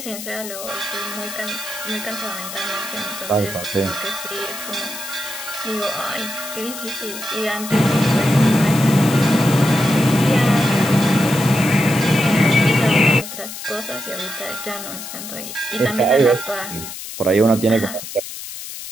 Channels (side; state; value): left; noise; hiss, 10 dB below the sound